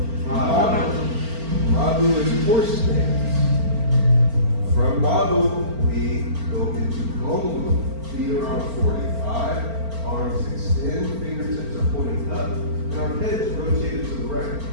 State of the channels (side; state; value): left; late; 4.4 ms